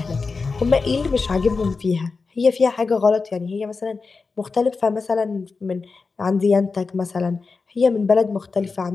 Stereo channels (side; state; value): right; quieter; 4.4 dB